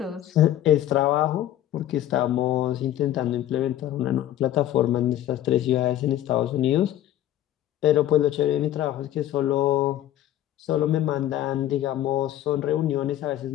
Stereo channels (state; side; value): quieter; right; 12.6 dB